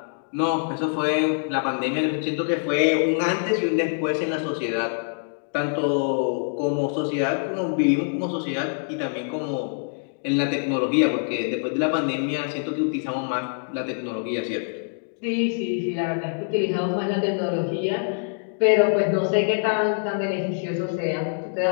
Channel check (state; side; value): silent; right; digital silence